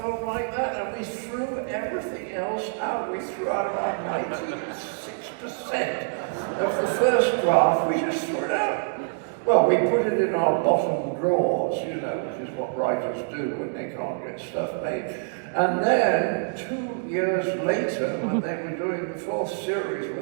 like that. And we threw everything else out. We threw out about 96% of the first draft. We just threw it out. Well, we put it in our bottom drawers, you know, which is what writers do when they can't get stuff made. And then, 2 years later, when they were doing the 4th series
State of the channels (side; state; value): left; silent; digital silence